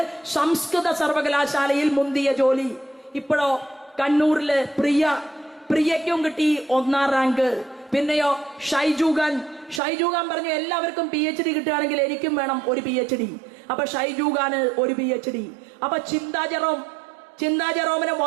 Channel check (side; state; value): left; drops out; at 9.8 s